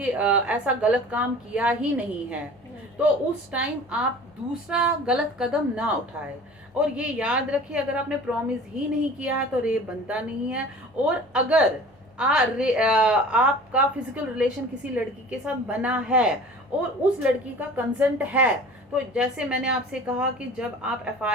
ऐसा गलत काम किया ही नहीं है, तो उस टाइम आप दूसरा गलत कदम ना उठाए। और ये याद रखिए, अगर आपने प्रॉमिस ही नहीं किया है तो रेप बनता नहीं है। और अगर आपका फिजिकल रिलेशन किसी लड़की के साथ बना है और उस लड़की का कंसेंट है। तो जैसे मैंने आपसे कहा कि जब आप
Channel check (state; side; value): normal; both; correlation 0.43